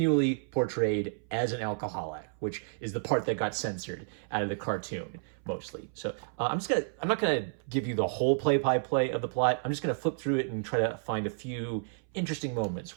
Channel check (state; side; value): silent; left; 57 dB below the other